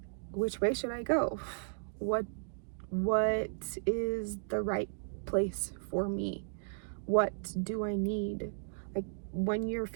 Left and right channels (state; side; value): silent; left; digital silence